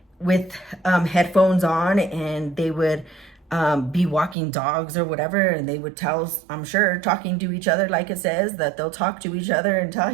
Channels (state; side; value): drops out; left; at 4.4 s